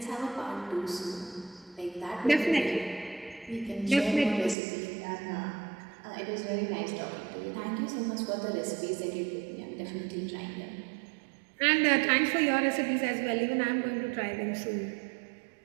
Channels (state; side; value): drops out; left; at 4.5 s